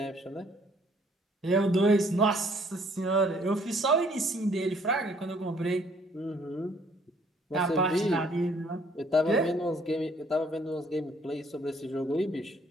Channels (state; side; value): normal; both; correlation 0.62